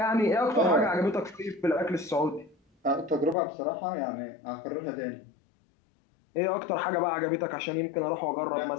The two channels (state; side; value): drops out; right; at 3.4 s